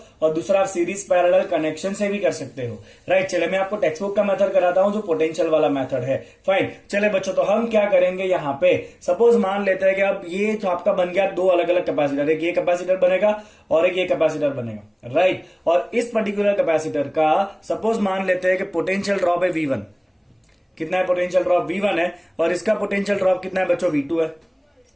और दूसरा आप सीरीज पैरेलल कनेक्शन से भी कर सकते हो। राइट, चले मैं आपको टेक्स्ट बुक का मेथड कराता हूं जो पोटेंशियल वाला मेथड है। फाइन, चले बच्चों तो हम क्या करेंगे यहाँ पे, सपोज मान लेते हैं कि अब ये तो आपका बन गया दो अलग अलग कैपेसिटर, एक ये कैपेसिटर बनेगा और एक ये कैपेसिटर बनेगा। राइट, और इस पर्टिकुलर कैपेसिटर का सपोज मान लेते हैं कि पोटेंशियल ड्रॉप है V1। कितना है पोटेंशियल ड्रॉप? V1 है, और इसका पोटेंशियल ड्रॉप कितना है बच्चों? V2 है।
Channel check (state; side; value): identical; both; correlation 1.00